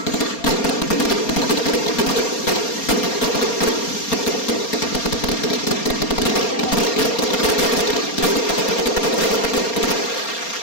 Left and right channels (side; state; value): right; late; 4.3 ms